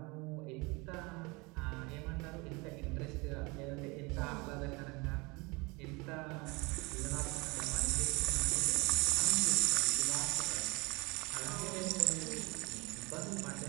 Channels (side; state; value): left; quieter; 26.3 dB